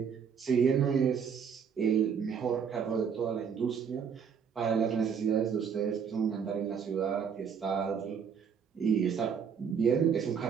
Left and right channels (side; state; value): left; quieter; 6.9 dB